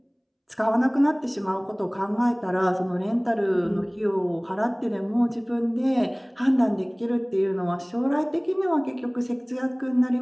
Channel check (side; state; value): both; identical; correlation 1.00